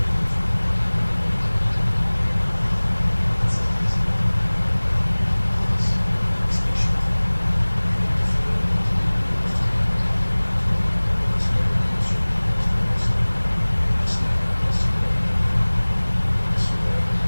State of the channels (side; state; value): both; inverted; correlation -1.00